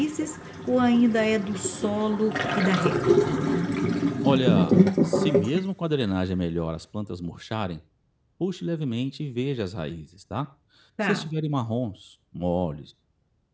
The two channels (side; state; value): both; identical; correlation 1.00